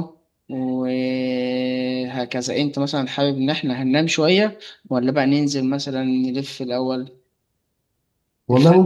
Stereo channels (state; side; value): identical; both; correlation 1.00